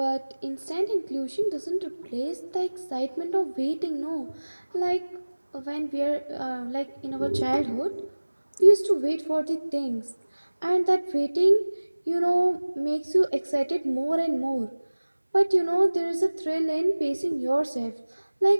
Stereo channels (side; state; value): both; inverted; correlation -1.00